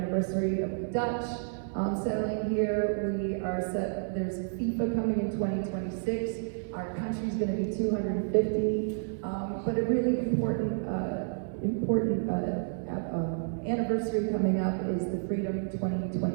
of Dutch settling here. We are set. There's FIFA coming in 2026. Our country's going to be 250. But a really important anniversary coming up is the Freedom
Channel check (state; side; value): silent; left; 58 dB below the other